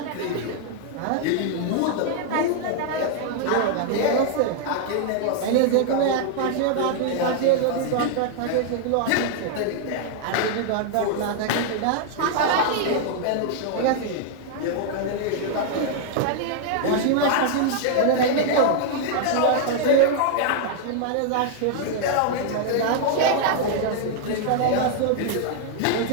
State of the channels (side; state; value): both; different; correlation 0.00